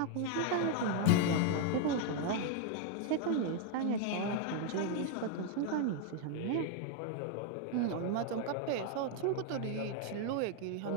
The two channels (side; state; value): both; different; correlation 0.01